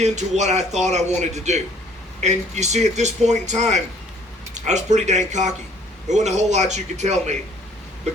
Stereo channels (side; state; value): both; normal; correlation 0.59